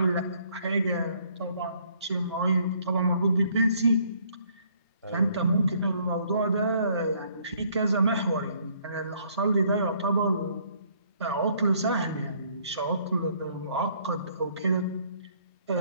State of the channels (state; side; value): inverted; both; correlation -0.64